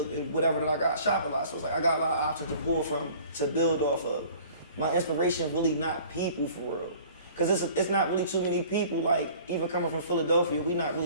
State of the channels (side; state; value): both; inverted; correlation -0.49